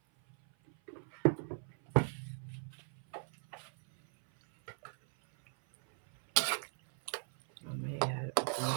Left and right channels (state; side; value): silent; left; 52 dB below the other